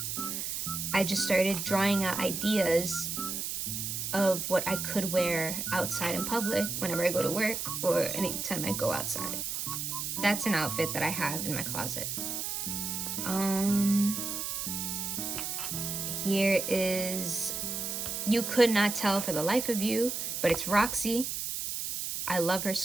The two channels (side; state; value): right; noise; hiss, 3 dB below the sound